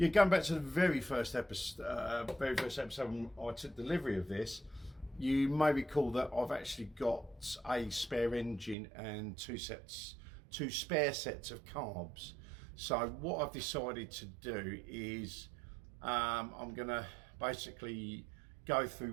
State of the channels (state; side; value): drops out; left; at 8.8 s